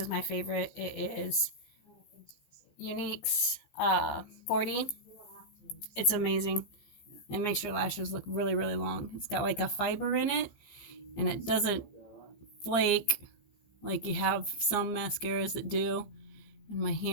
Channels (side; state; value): right; late; 15 ms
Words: my favorite. It is Younique's 40. It's amazing. It makes your lashes look really, really long. It's got like a fiber in it, and it doesn't flake like you have some mascaras that do. And my